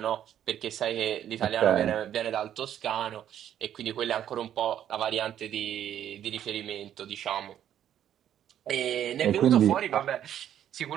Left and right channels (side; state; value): left; quieter; 10.5 dB